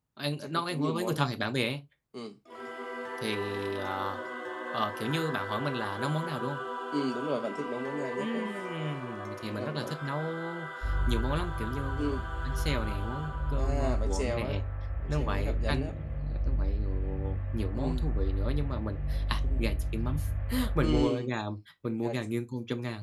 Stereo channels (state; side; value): identical; both; correlation 1.00